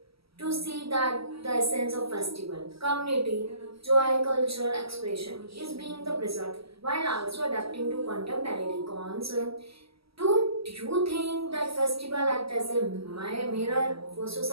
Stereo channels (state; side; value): late; left; 0.76 ms